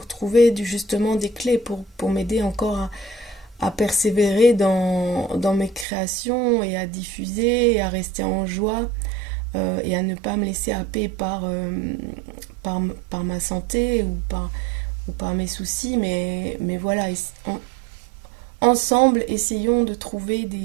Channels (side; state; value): left; drops out; at 5.9 s